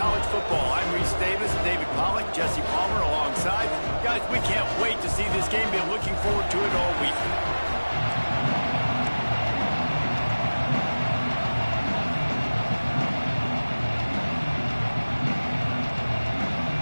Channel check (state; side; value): inverted; both; correlation -1.00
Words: Football, I'm Reese Davis, David Pollack, Jesse Palmer alongside. Guys, we can't wait to see this game. Been looking forward to it all week.